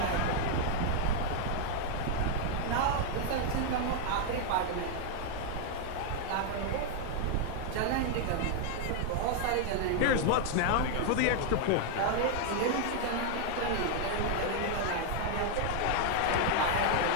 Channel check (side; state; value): both; different; correlation 0.00